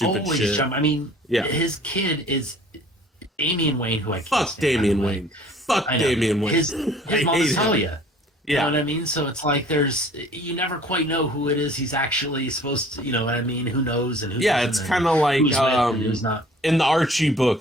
shit. I mean, his kid is Damian Wayne, who I can't fuck stand, Damian Wayne. Fuck Damian Wayne. His mom is Talia. Yeah. You know what I mean? So it's like you never quite know who it is he's actually supposed to, you know what I mean? Who knows and who doesn't, it's kind of like who's not. In the Archie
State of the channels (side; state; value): both; normal; correlation 0.51